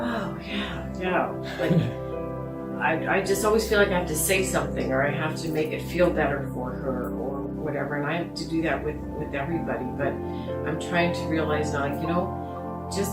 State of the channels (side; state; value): both; identical; correlation 1.00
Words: yeah, like, I just always feel like I have to say something, or I have to make it feel better for her, or whatever, and I have to do that with everybody, but I'm trying to realize now, like, you know, just